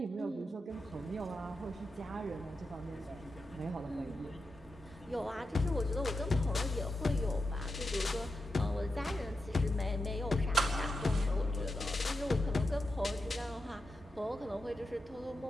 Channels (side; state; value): both; normal; correlation 0.88